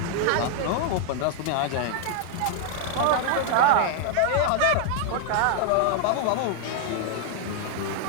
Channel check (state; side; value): different; both; correlation 0.00